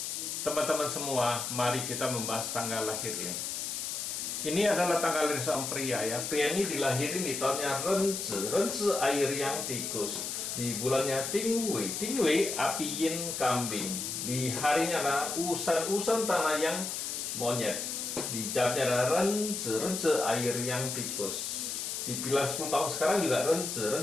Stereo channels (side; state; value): left; noise; hiss, 4 dB below the sound